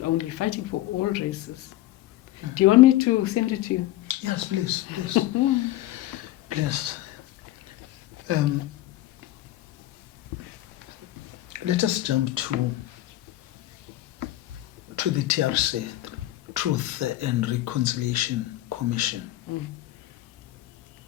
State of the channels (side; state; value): right; quieter; 15.4 dB